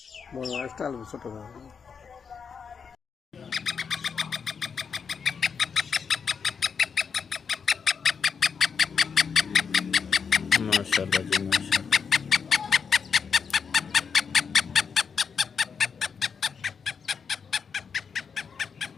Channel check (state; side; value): quieter; right; 6.2 dB